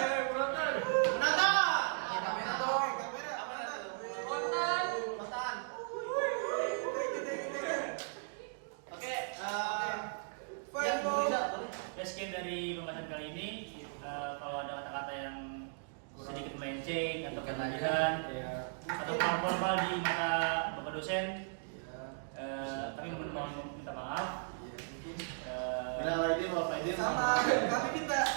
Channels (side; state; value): left; silent; digital silence